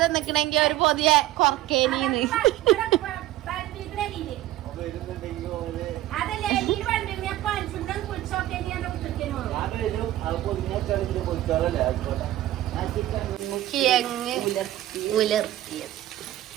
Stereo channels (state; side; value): quieter; left; 14.7 dB